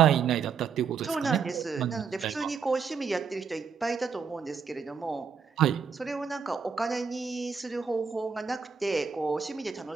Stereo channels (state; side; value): quieter; left; 6.1 dB